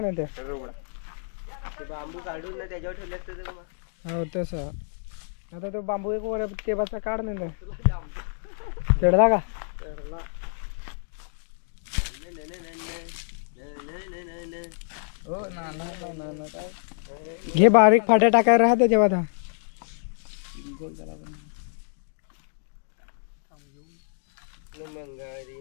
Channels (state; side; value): silent; right; digital silence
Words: ना ते. ते बांबू काढून ना त्याच्यावर ठेवले असते तर मग. हो तसं. आता तो बांबू एक वर तेबाचा काढ नाही चढला का? घे बारीक फाट्या टाकायला राहते तेव्हा आता. मंगारी